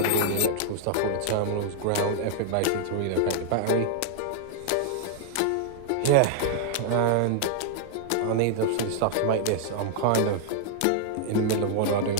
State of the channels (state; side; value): different; both; correlation 0.00